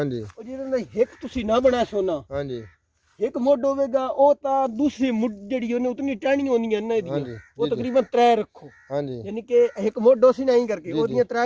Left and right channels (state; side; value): identical; both; correlation 1.00